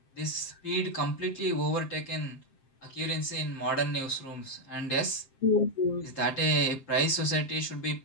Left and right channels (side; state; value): right; late; 7.6 ms